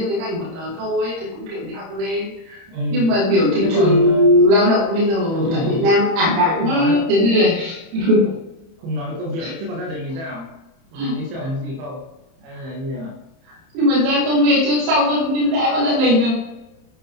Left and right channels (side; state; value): left; late; 30 ms